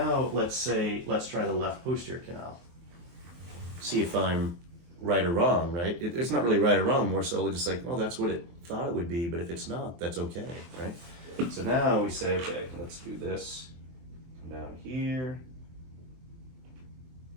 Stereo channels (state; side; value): late; left; 23 ms